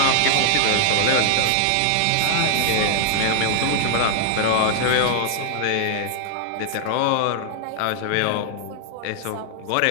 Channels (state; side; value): different; both; correlation 0.00